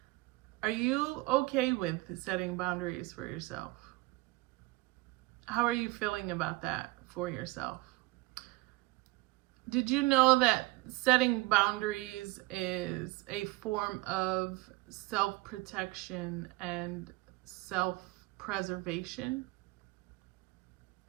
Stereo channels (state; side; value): quieter; left; 20.8 dB